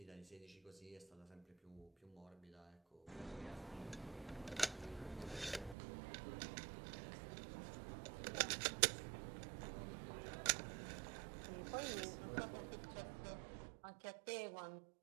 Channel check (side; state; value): left; drops out; at 5.8 s